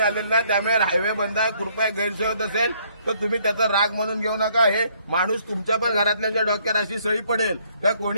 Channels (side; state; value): both; inverted; correlation -0.66